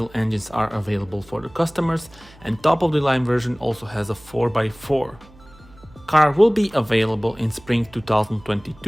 engines are available for the customers, and top of the line version also has a 4x4. Car will be available in spring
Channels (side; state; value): right; noise; hum, 25 dB below the sound